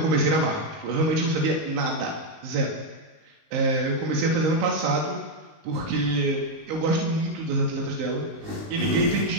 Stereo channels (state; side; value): late; left; 19 ms